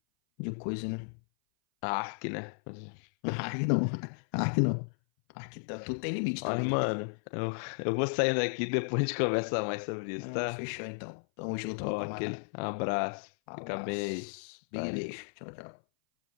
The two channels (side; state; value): right; silent; 55 dB below the other